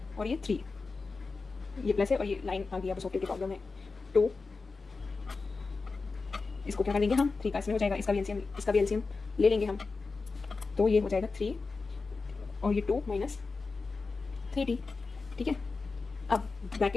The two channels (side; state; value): right; quieter; 4.1 dB